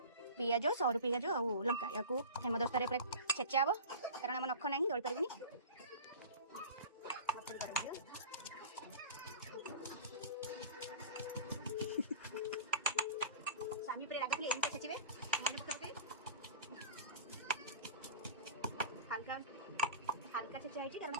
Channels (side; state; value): both; inverted; correlation -0.36